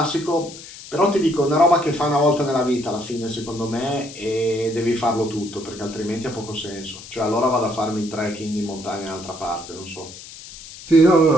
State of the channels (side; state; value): left; noise; hiss, 15 dB below the sound